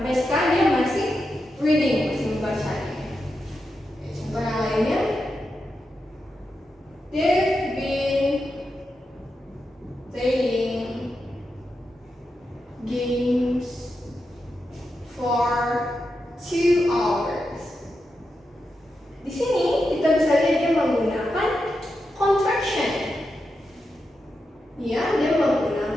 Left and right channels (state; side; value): normal; both; correlation 0.87